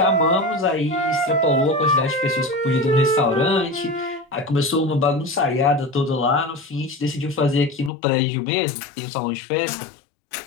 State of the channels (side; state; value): right; drops out; at 7.9 s